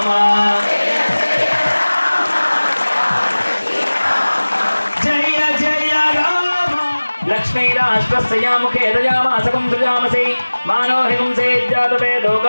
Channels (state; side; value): inverted; both; correlation -1.00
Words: జయ జయ రామ లక్ష్మీరాష్ట్రస్యాముఖే దయామాసకం సృజామసి మానో హింసే జాతవేదో